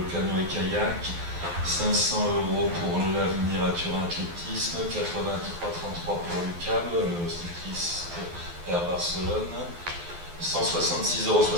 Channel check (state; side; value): late; left; 12 ms